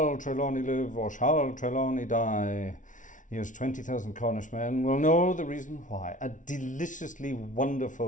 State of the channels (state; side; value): late; right; 0.37 ms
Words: Trelawney live or shall Trelawney die? Here's 20,000 Cornish men will know the reason why. A deliciously